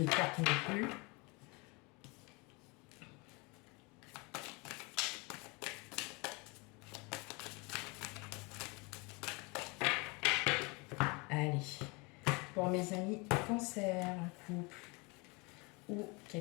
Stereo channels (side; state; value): right; quieter; 28.4 dB